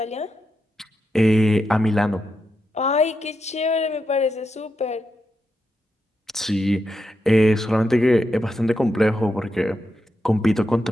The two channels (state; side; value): normal; both; correlation 0.85